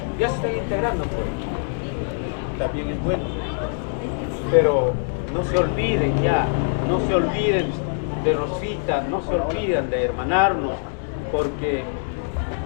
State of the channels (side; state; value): right; silent; 63 dB below the other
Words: ya se están integrando, pues. También es bueno. Pero no se olviden ya, no se olviden de Rosita, no se olviden de hermanarnos, porque